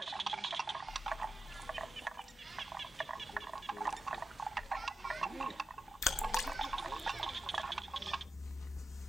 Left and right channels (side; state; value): both; normal; correlation 0.90